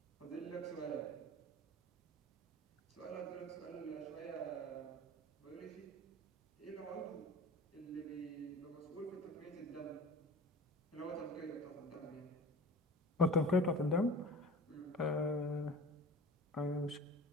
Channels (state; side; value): normal; both; correlation 0.38